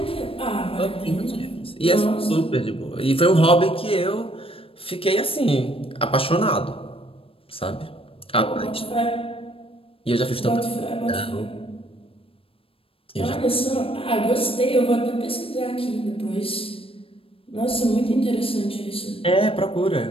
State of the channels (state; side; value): late; right; 0.27 ms